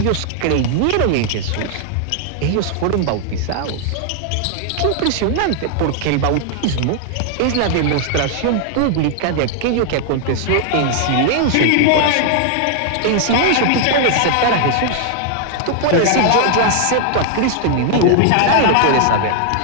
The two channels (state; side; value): different; both; correlation 0.00